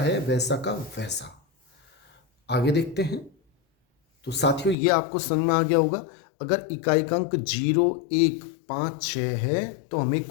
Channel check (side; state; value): right; drops out; at 4.8 s